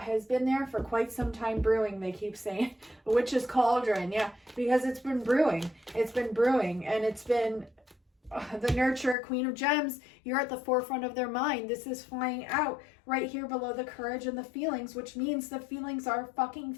has been there for quite some time brewing, they keep saying. Witch's cauldron, yeah, because it's been brewing. It's been brewing, and it's been the nurturer, queen of gems. You're at the forefront of their mind. This is flying out right here below the courage and the feelings, which means the feelings are fucking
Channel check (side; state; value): right; drops out; at 9.2 s